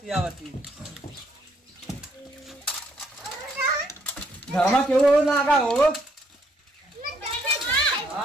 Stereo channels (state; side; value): normal; both; correlation 0.69